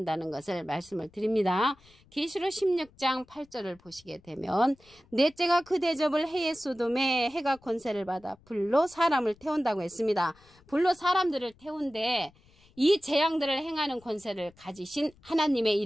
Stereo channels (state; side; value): noise; left; rumble, 29 dB below the sound